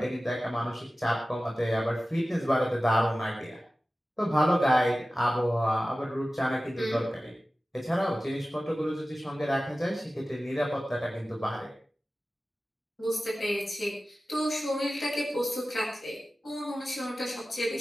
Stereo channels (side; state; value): both; normal; correlation 0.96